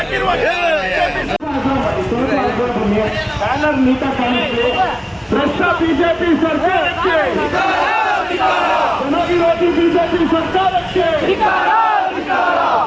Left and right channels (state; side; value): identical; both; correlation 1.00